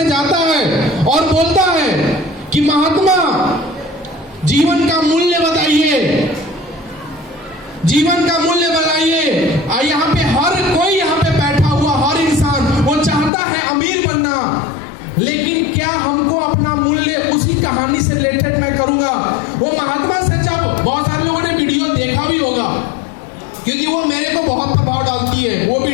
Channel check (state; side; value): drops out; right; at 13.3 s